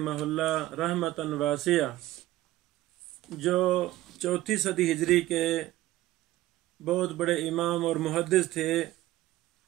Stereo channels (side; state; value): left; quieter; 15.9 dB